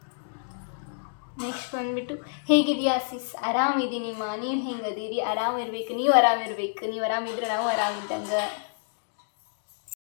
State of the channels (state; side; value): silent; right; digital silence